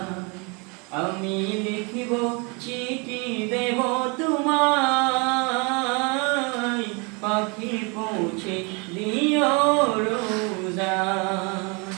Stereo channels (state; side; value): quieter; left; 31.2 dB